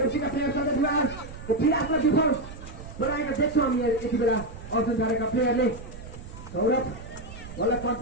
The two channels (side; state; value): right; noise; rumble, 13 dB below the sound